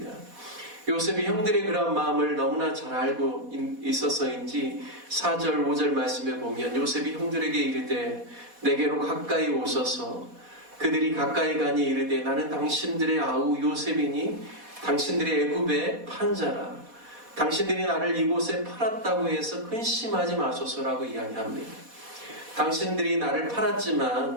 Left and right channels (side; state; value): left; late; 4.1 ms